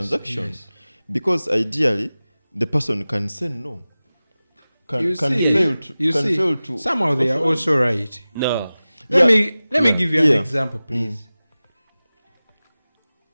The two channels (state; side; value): inverted; both; correlation -0.97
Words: yes. Because ideally, the person can say no. You Can see, fail to. somehow they are authorize. also right. No, Let Yeah. me give you an Yeah. example, please.